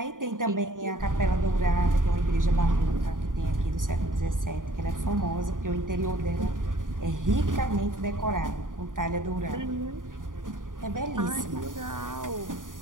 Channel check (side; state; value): left; late; 0.89 ms